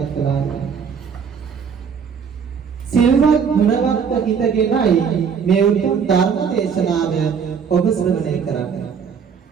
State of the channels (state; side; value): quieter; left; 6.7 dB